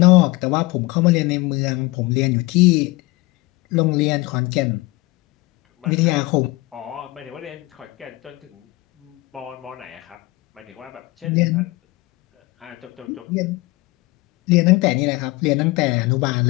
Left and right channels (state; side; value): quieter; right; 22.0 dB